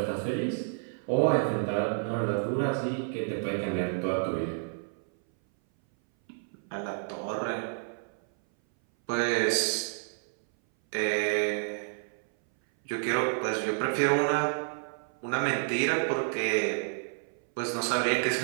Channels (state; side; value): silent; left; 58 dB below the other